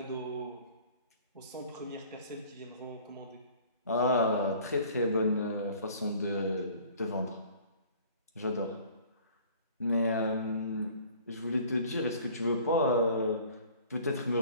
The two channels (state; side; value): inverted; both; correlation -0.50